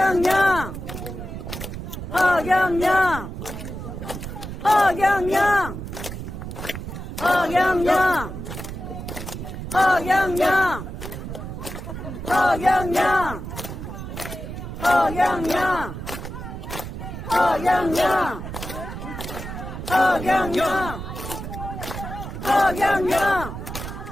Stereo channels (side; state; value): right; noise; rumble, 8 dB below the sound